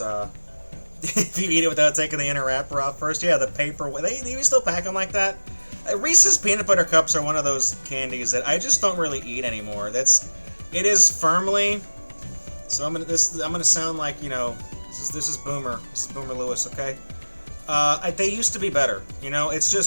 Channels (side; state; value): both; inverted; correlation -1.00